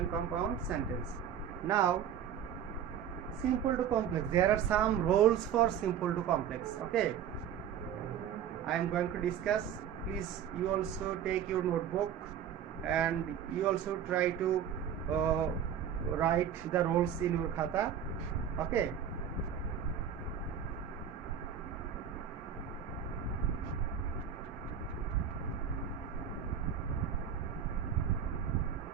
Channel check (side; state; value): left; quieter; 8.8 dB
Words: compound sentence. Now simple to complex, there are some rules for simple to complex. Okay, I am going to discuss. Please you also take your notebook and you also try to write the rules in your khata. Okay,